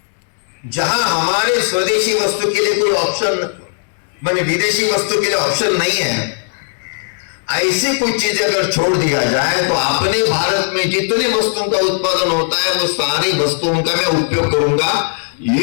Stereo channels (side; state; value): right; silent; digital silence